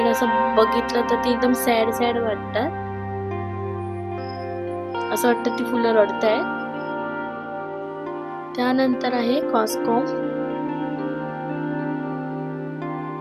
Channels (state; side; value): identical; both; correlation 1.00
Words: असं बघितलं तर ती एकदम सॅड सॅड वाटतात. असं वाटतं ती फुलं रडतायत. त्यानंतर आहे कॉस्कॉम.